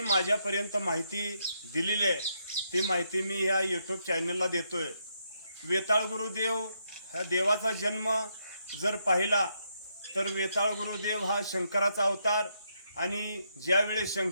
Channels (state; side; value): inverted; both; correlation -0.78